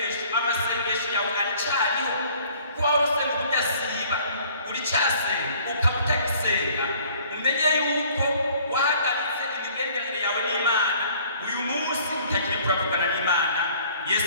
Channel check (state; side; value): inverted; both; correlation -0.55